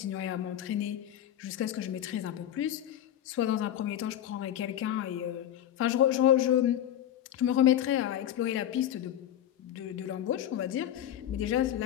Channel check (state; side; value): quieter; right; 11.3 dB